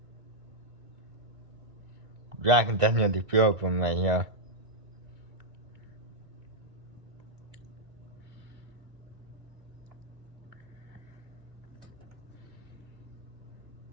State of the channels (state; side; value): late; left; 2.0 ms